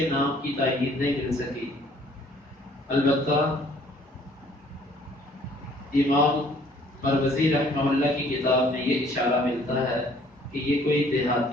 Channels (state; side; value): normal; both; correlation 0.59